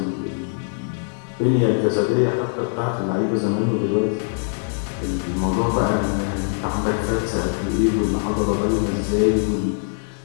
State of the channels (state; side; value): silent; right; 63 dB below the other